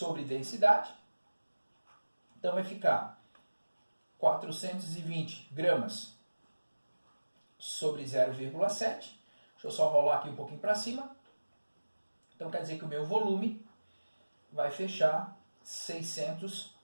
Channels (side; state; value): both; inverted; correlation -1.00